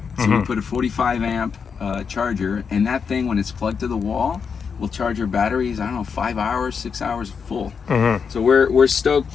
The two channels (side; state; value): right; quieter; 6.1 dB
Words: So we put a 45 amp charger, and that thing, when it's plugged to the wall, will charge your batteries, I don't know, 5 hours, 6 hours full. So we're